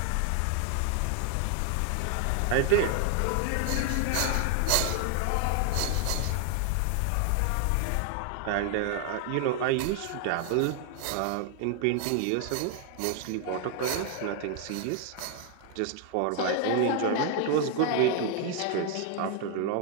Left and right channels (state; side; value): different; both; correlation 0.00